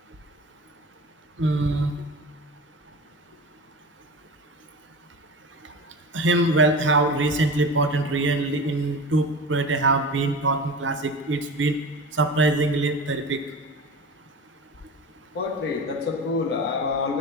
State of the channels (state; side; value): normal; both; correlation 0.31